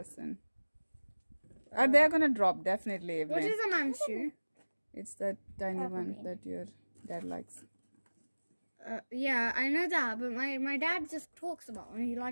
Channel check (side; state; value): both; inverted; correlation -1.00